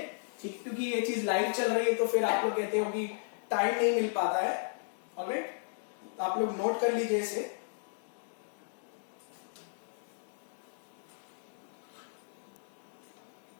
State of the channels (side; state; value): right; silent; digital silence